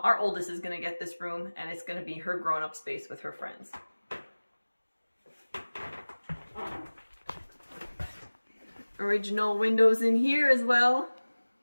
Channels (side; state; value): both; inverted; correlation -1.00